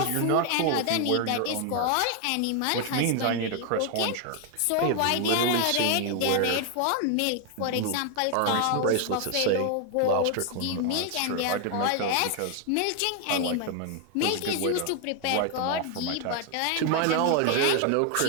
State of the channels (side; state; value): both; different; correlation 0.01